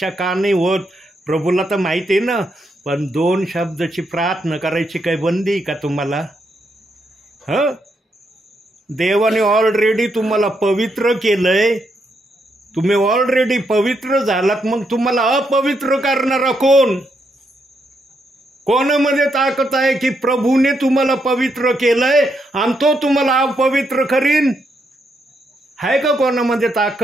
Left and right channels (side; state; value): both; normal; correlation 0.79